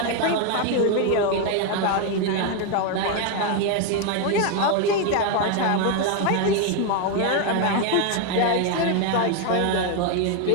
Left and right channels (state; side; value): different; both; correlation 0.02